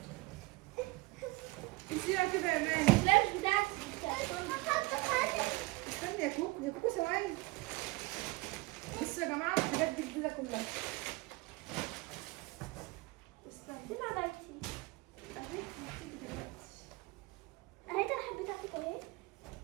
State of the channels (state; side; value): quieter; left; 22.9 dB